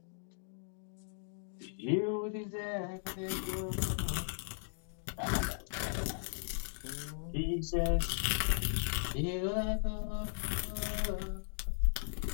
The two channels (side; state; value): right; silent; digital silence